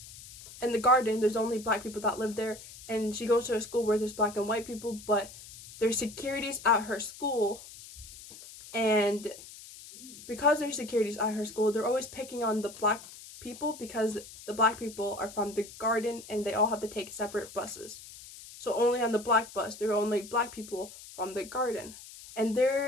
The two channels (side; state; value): left; noise; hiss, 16 dB below the sound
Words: in the Garden, there's only black people that live there, and she goes to a school where there's black and white people, but there's securities at her school, and because there's securities at her school, they're always picking on the black people because the black people are from the Garden and they all have to take separate buses. So only on the black bus, there are only black people from the Garden, and